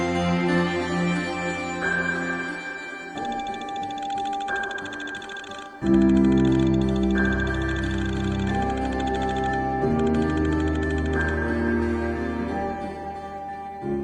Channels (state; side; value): identical; both; correlation 1.00